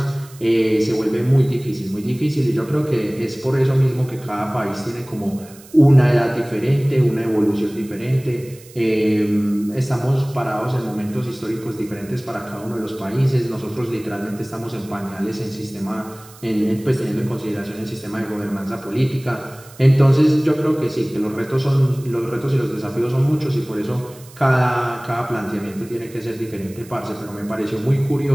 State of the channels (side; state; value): right; noise; hiss, 22 dB below the sound